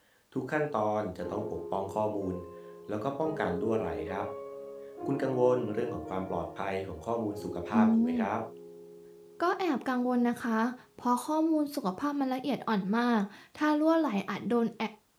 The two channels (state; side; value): identical; both; correlation 1.00